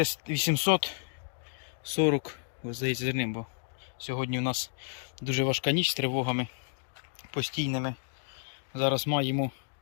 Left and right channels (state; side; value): silent; right; digital silence